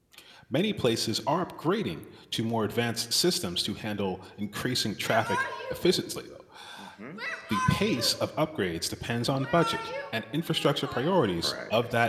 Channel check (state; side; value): identical; both; correlation 1.00